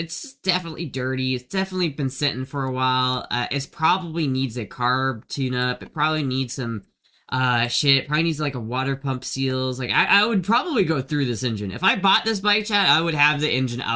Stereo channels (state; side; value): identical; both; correlation 1.00